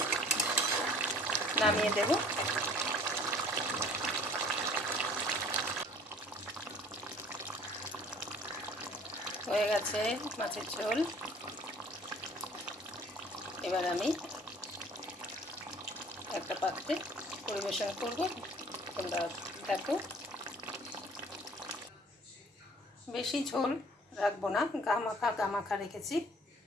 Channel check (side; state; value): both; normal; correlation 0.52